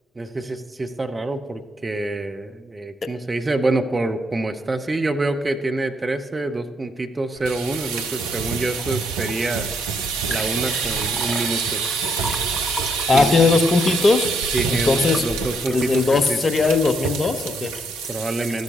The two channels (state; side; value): normal; both; correlation 0.73